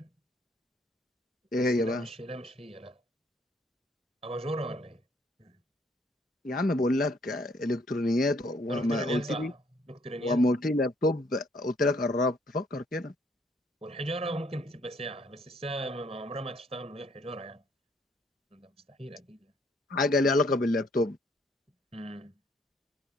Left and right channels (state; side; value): normal; both; correlation 0.66